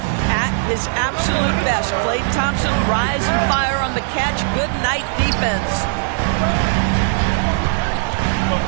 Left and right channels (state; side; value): silent; left; digital silence